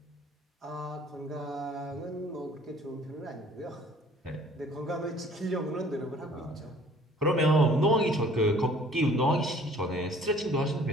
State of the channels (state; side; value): normal; both; correlation 0.54